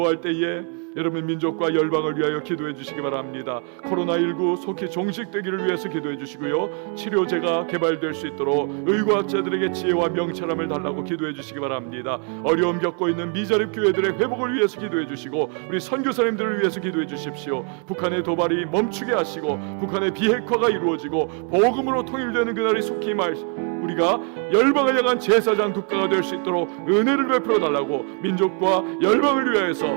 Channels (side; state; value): left; quieter; 38.8 dB